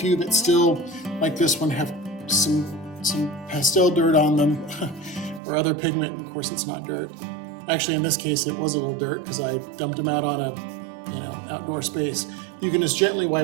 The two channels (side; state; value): left; drops out; at 5.4 s